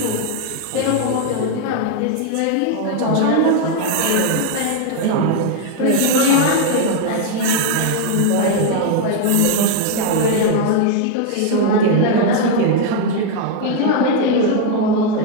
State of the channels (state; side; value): different; both; correlation 0.01